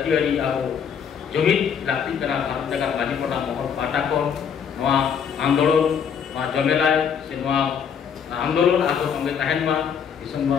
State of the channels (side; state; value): right; quieter; 7.4 dB